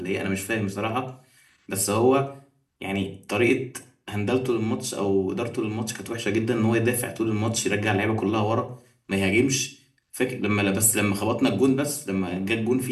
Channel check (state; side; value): identical; both; correlation 1.00